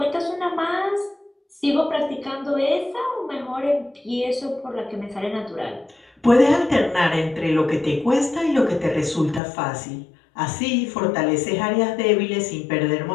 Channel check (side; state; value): right; drops out; at 9.4 s